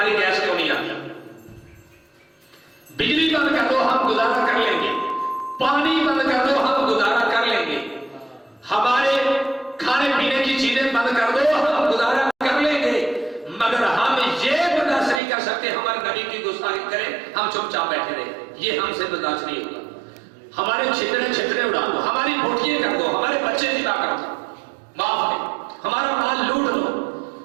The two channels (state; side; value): drops out; left; at 15.2 s